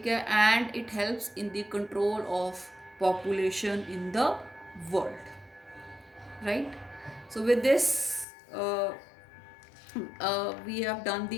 ਹੈ, and it helps in the control of population in the world, right? So with this we have done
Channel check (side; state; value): right; drops out; at 8.2 s